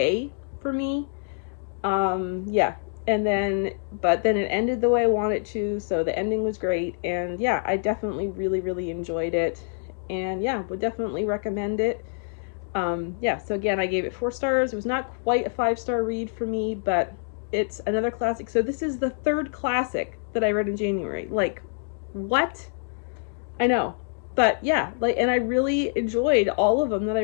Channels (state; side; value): silent; right; digital silence